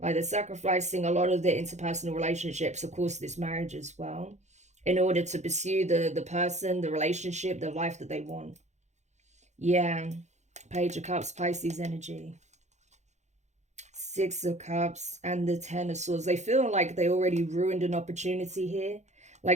Like they're sacrificing a lot of their interpersonal relationships, of course, this marriage as well, in order to pursue the person, the relationship, the life that they want. Yeah. Page of Cups, Pisces energy. Six of Cups and the Ten of Swords. They feel like they already ruined an opportunity here.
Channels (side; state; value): left; late; 0.33 ms